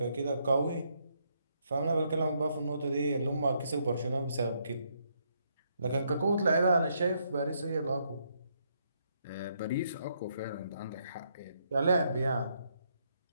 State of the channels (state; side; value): inverted; both; correlation -0.75